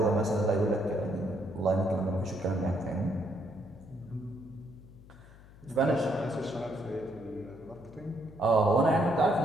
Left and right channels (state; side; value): noise; left; hum, 21 dB below the sound